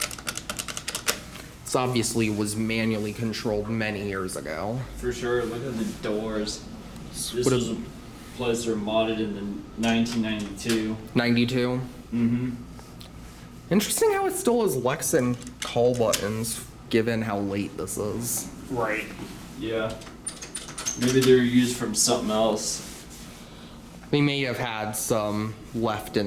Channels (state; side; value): identical; both; correlation 1.00